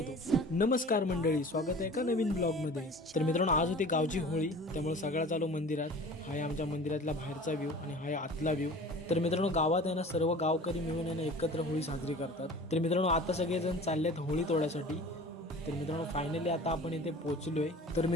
नमस्कार मंडळी, स्वागत आहे एका नवीन ब्लॉग मध्ये। तर मित्रांनो, आज होती गावची होळी, त्यामुळे सगळा चालू मंदिरात। हा आहे आमच्या मंदिरातला बाहेरचा व्ह्यू आणि हा आहे आतला व्ह्यू। तर मित्रांनो, गावात आहे ना सर्व गावकरी मिळून आहे ना एकत्र होळी साजरी करतात। तर मित्रांनो, आता सगळेजण चाललेत होळी तोडायसाठी। तर मित्रांनो, फायनली आता आपण इथे पोहोचलोय। तर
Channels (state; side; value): normal; both; correlation 0.42